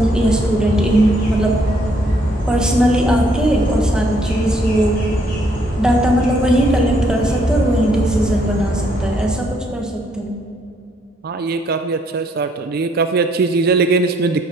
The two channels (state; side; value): normal; both; correlation 0.69